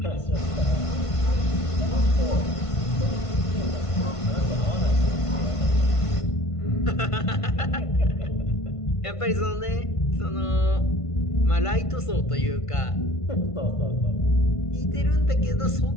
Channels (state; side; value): late; right; 1.5 ms